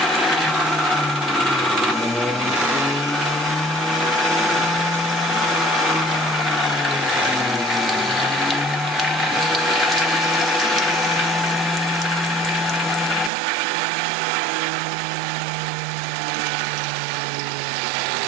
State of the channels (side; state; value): left; drops out; at 13.3 s